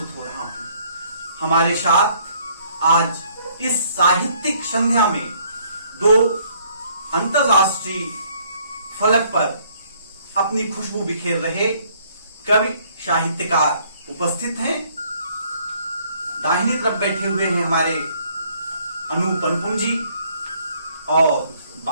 हो रहा हूं। हमारे साथ आज इस साहित्यिक संध्या में 2 अंतरराष्ट्रीय फलक पर अपनी खुशबू बिखेर रहे कवि साहित्यकार उपस्थित हैं। दाहिनी तरफ बैठे हुए हैं हमारे अनूप अनुपम जी और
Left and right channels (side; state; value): both; inverted; correlation -0.64